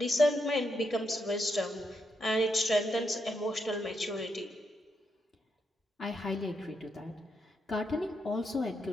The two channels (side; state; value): both; normal; correlation 0.81